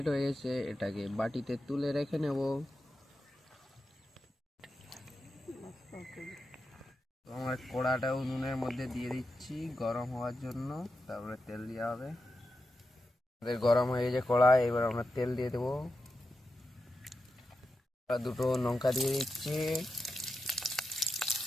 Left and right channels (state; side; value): normal; both; correlation 0.89